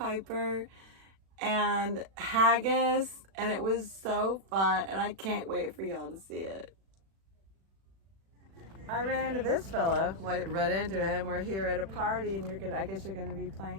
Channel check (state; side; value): late; left; 36 ms